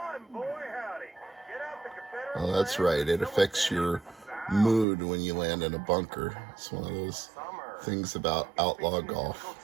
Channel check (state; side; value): drops out; left; at 4.9 s